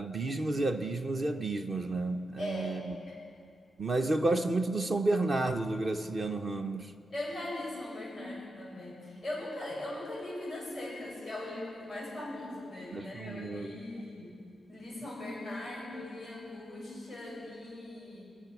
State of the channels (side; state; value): both; normal; correlation 0.87